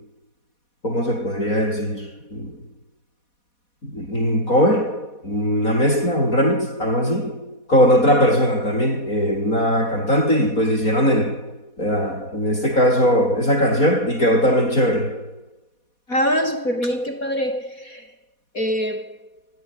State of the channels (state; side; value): late; right; 4.2 ms